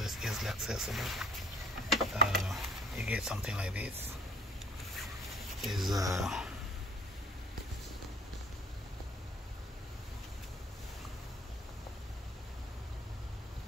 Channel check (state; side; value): normal; both; correlation 0.53